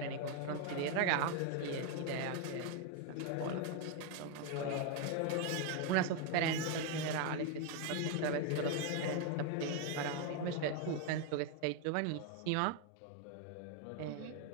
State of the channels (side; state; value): both; different; correlation 0.01